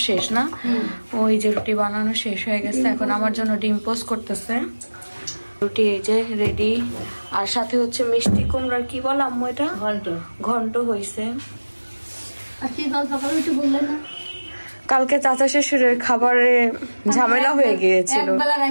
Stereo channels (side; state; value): both; inverted; correlation -1.00